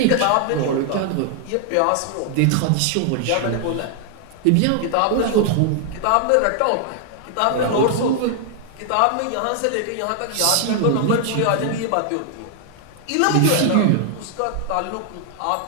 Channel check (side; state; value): both; different; correlation 0.00